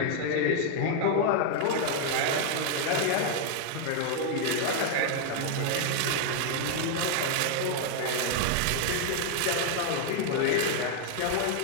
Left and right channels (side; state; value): both; different; correlation 0.00